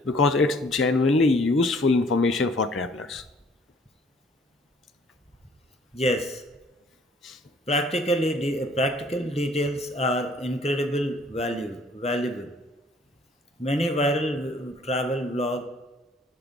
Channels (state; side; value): normal; both; correlation 0.58